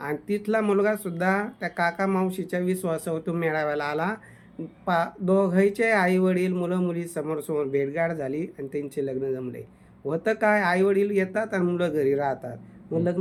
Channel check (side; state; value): both; identical; correlation 1.00